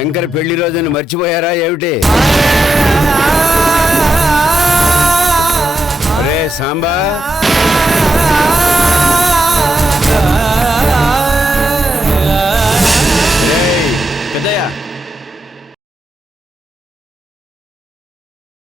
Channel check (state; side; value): normal; both; correlation 0.86